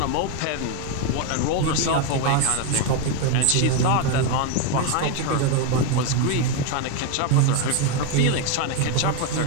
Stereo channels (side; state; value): both; different; correlation 0.02